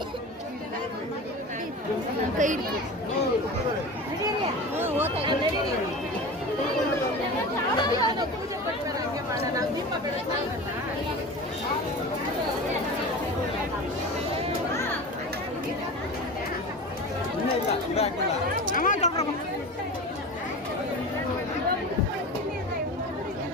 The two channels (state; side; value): normal; both; correlation 0.31